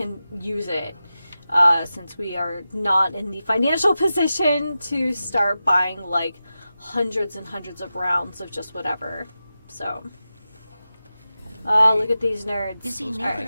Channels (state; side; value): inverted; both; correlation -0.92